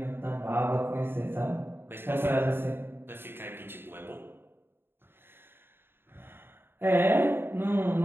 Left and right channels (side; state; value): left; late; 0.11 ms